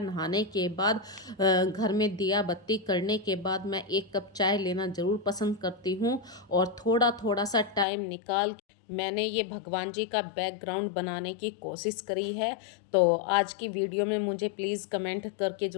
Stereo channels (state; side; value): drops out; right; at 7.9 s